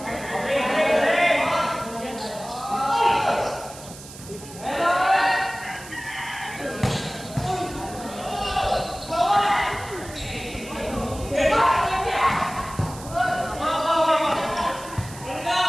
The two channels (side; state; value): right; noise; hiss, 16 dB below the sound